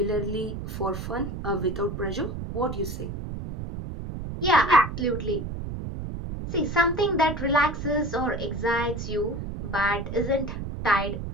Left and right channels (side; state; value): right; noise; rumble, 6 dB below the sound